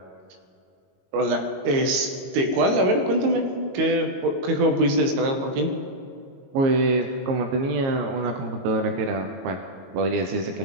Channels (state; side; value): late; left; 22 ms